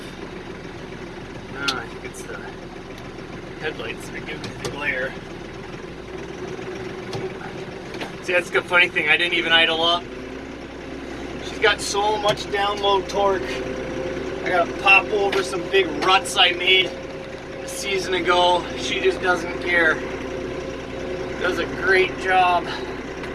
No, I think it's the headlights that give me the glare. See, that's the funny thing. I didn't even idle up. She's got so much download torque. I gotta pop over some big ruts I made a season ago. She just doesn't care. Does a great job.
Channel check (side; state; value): both; identical; correlation 1.00